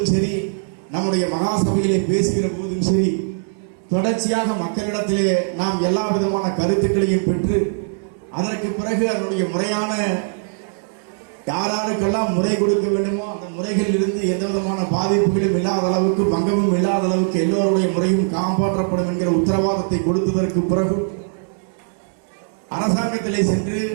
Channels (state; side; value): silent; left; 65 dB below the other